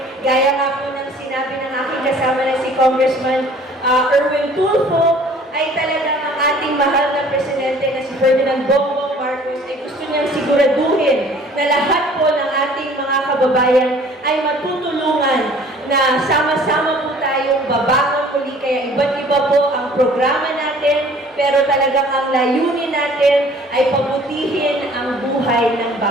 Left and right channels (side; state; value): both; normal; correlation 0.52